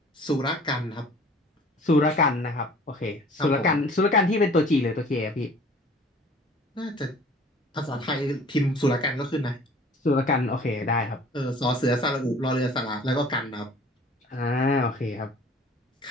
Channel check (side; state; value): both; normal; correlation 0.49